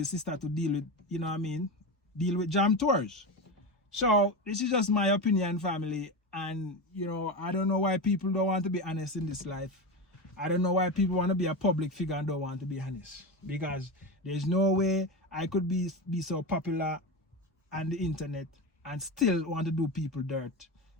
sister to deal with, you know what I mean, deal with Jam Tours. So this is just my opinion, family. And I don't know why people don't want to be honest in this life. I don't know why people want to be a public figure and don't want to be honest. Because there's no way I could be so popular on the internet and still want to do people dirt,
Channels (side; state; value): both; normal; correlation 0.20